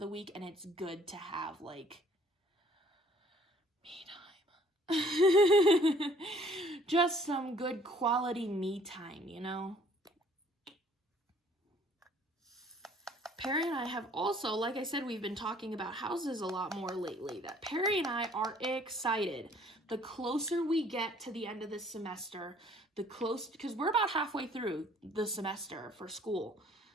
week, and it's good to have like me time. Just some good quality me time, you know? Perry and I have also, like I said, we've been talking about houses a lot more lately, that Perry and I are excited. The closer we get to the end of this semester, because we're about halfway through the semester for school.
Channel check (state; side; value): normal; both; correlation 0.58